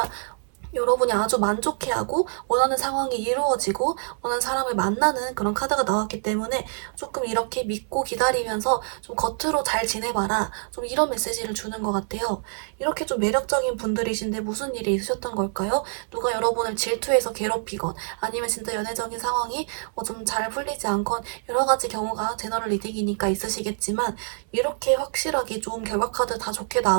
여러분이 아주 만족해하고 원하는 상황이 이루어지고 원하는 사람을 만나는 그런 카드가 나왔기 때문에 조금 이렇게 믿고 기다리면서 좀 겉으로 잘 지내봐라. 좀 이런 메시지를 주는 것 같아요. 이렇게 좀 매력적인 분들이신데 무슨 일이 있으셨던 걸까요? 누가 여러분을 질투해서 괴롭히건 아니면 진짜 연애적인 상황이 좀 잘 풀리지 않건 여러 가지 경우가 제너럴 리딩이니까 있으시겠지만 이렇게 확실하게 좀 결과 카드 다 좋게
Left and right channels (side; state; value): left; silent; 61 dB below the other